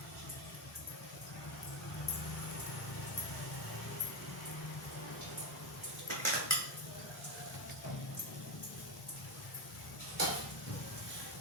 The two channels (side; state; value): both; normal; correlation 0.10